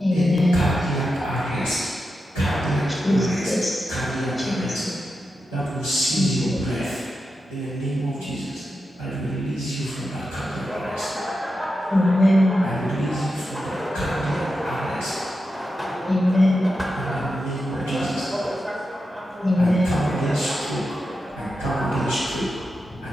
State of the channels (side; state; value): both; normal; correlation 0.89